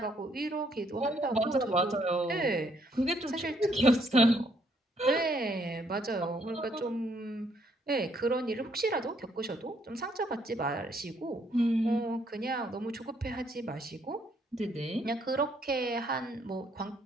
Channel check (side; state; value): both; normal; correlation 0.69